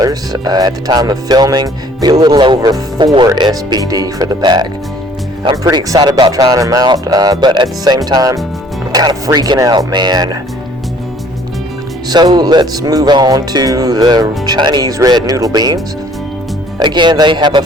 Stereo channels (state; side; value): normal; both; correlation 0.56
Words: At the time of filming, it'd be a little over 4 SBD for the pack. I'm pretty excited about trying them out, but at the same time, I'm kind of freaking out, man. So let's move on to the Chinese red noodle beans. Again, they have a